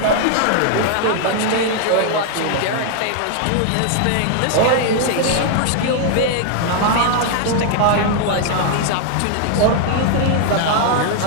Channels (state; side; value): different; both; correlation 0.00